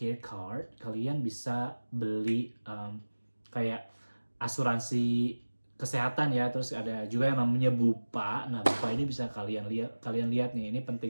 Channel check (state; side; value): inverted; both; correlation -1.00